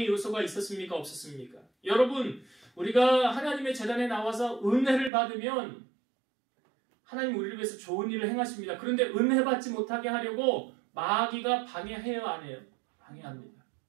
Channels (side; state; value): left; drops out; at 5.1 s